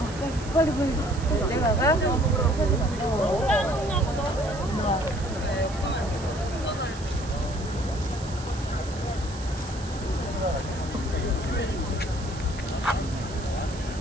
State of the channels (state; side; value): noise; right; hiss, 16 dB below the sound